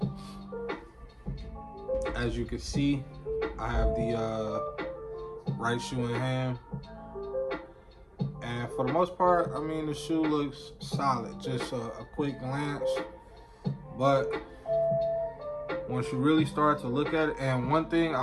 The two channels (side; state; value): both; identical; correlation 1.00